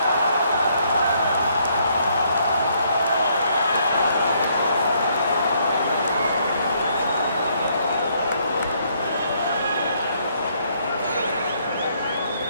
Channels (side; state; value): both; inverted; correlation -0.69